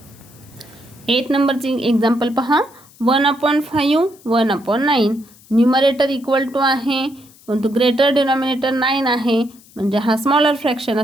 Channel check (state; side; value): noise; left; hiss, 26 dB below the sound